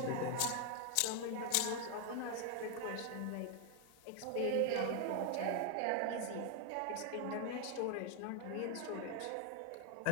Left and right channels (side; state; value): both; different; correlation 0.01